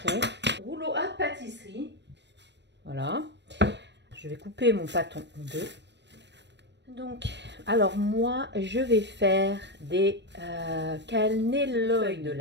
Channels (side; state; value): left; late; 0.51 ms